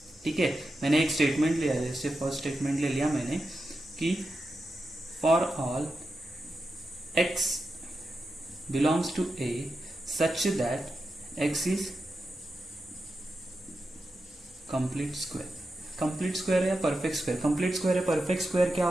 ठीक है, मैंने एक स्टेटमेंट लिया, जैसे फर्स्ट स्टेटमेंट ले लिया मैंने कि for all x belongs to A such that x is complete square. Complete square या परफेक्ट स्क्वायर? कंप्लीट स्क्वायर या परफेक्ट स्क्वायर क्या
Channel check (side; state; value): both; normal; correlation 0.89